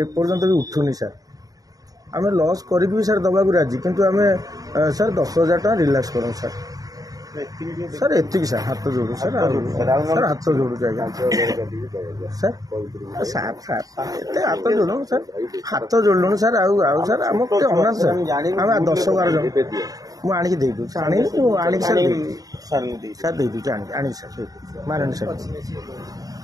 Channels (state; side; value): late; left; 0.18 ms